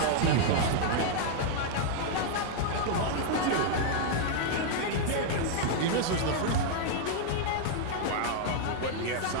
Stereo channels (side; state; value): both; different; correlation 0.00